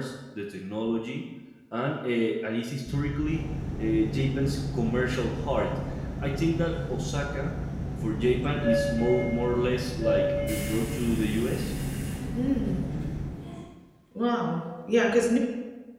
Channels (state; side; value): identical; both; correlation 1.00